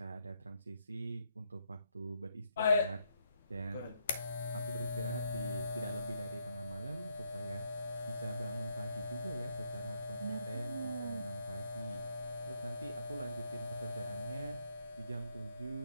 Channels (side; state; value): both; inverted; correlation -0.75